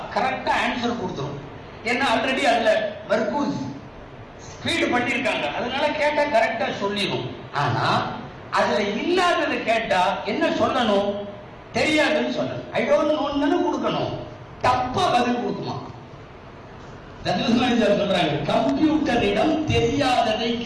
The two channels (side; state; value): both; identical; correlation 1.00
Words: கரெக்டா ஆன்சர் கொடுத்துரும். ஏன்னா ஆல்ரெடி அதுல மர்கூஸ் ஃபீட் பண்ணிருக்காங்க, அதனால கேட்டா கரெக்டா சொல்லிடும். ஆனா அதுல இல்லாததை கேட்டா என்ன சொல்லணும், தெரியாதுன்னு சொல்லணும். ஐ டோன்ட் நோன்னு கொடுக்கணும், தப்பா பதில் கொடுக்குமா. சொல்றாங்க, கம்ப்யூட்டரிடம் தெரியாததை